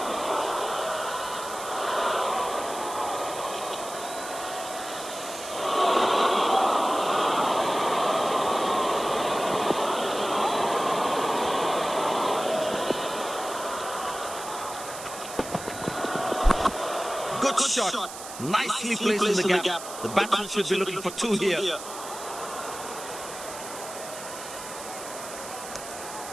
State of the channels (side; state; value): right; noise; hiss, 11 dB below the sound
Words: Good shot. Nicely placed in the gap. The batsman should be looking for two here.